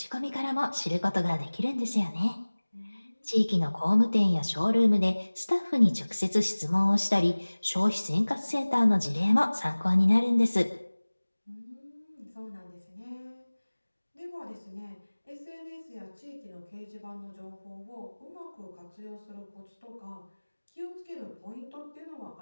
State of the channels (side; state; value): both; inverted; correlation -1.00